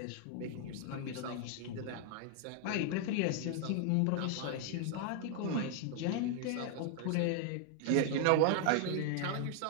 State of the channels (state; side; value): different; both; correlation 0.00